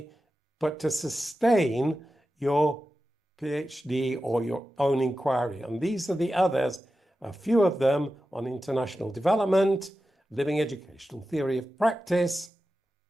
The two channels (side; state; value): both; normal; correlation 0.92